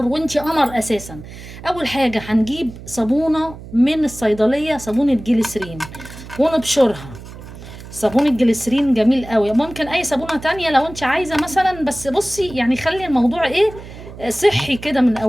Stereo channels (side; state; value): right; noise; hum, 15 dB below the sound